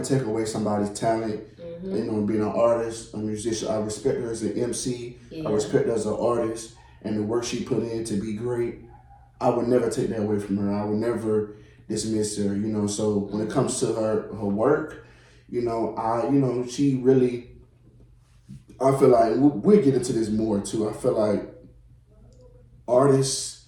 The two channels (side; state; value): both; identical; correlation 1.00